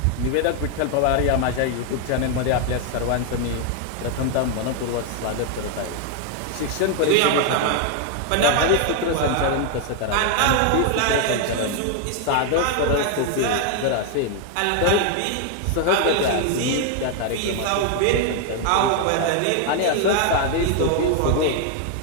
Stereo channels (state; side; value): different; both; correlation 0.00